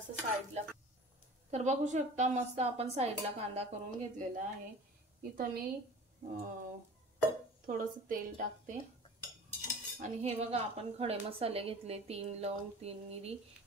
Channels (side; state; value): both; normal; correlation 0.41